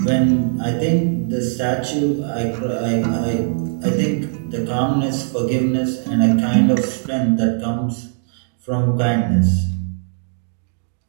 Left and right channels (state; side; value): silent; left; digital silence